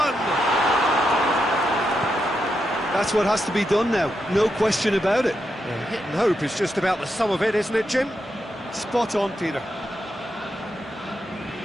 That's what has to be done now, no question about it. Well, hit and hope is just about the sum of it, isn't it, Jim? Spot on, Peter.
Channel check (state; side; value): normal; both; correlation 0.84